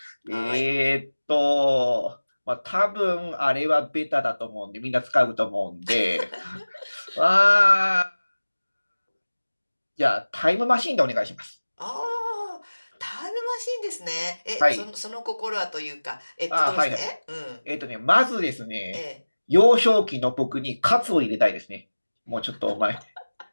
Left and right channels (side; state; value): both; inverted; correlation -1.00